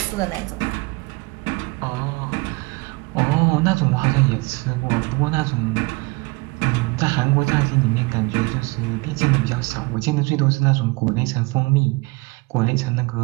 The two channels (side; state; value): left; quieter; 26.0 dB